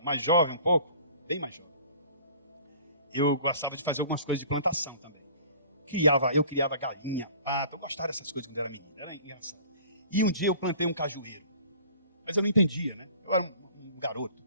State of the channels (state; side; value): inverted; both; correlation -0.48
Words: mais jovem um pouco, bem mais jovem, eu gostava de fazer algumas coisas de plantação também. Eu criava galinha, pato, eu gostava dessas coisas quando eu era menino, era engraçado. E um dia eu plantei um cajueiro, mas eu não entendia, né? Eu era um garoto.